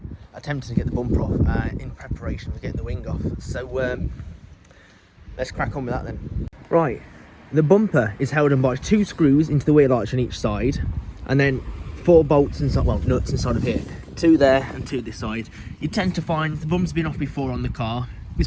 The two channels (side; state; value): both; identical; correlation 1.00